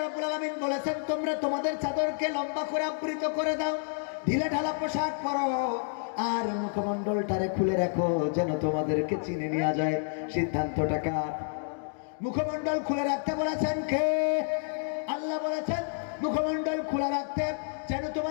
আলামিন বলেছেন তোমরা তোমাদের চাদরকে লম্বা করে আবৃত করে দাও, ঢিলে ঢালা পোশাক পরো, আর মুখমণ্ডলটারে খুলে রাখো যেন তোমাদেরকে চিনে নেওয়া যায়। সিদ্ধান্তটা কার? মুখমণ্ডল খুলে রাখতে বলেছেন কে? আল্লাহ বলেছেন মুখমণ্ডল খোলা রাখতে যেন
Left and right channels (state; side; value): silent; right; digital silence